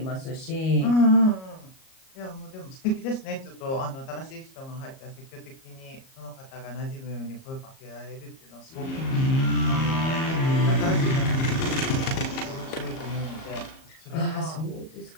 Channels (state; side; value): late; right; 37 ms